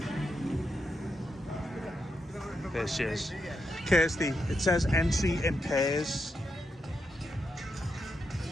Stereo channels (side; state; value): both; normal; correlation 0.84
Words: There she is. Kirsty, it says entry in pairs.